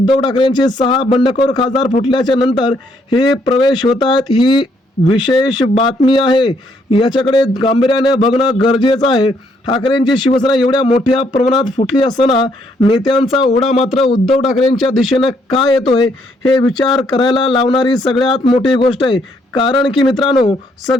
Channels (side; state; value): both; normal; correlation 0.71